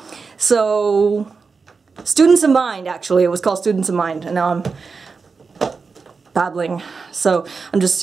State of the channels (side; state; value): left; quieter; 4.8 dB